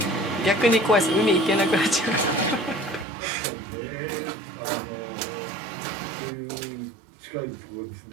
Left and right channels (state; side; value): drops out; left; at 3.1 s